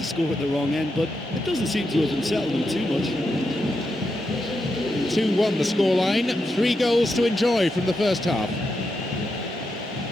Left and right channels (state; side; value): normal; both; correlation 0.85